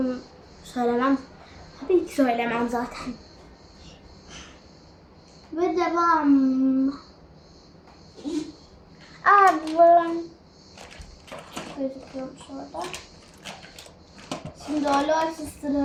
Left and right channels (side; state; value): both; identical; correlation 1.00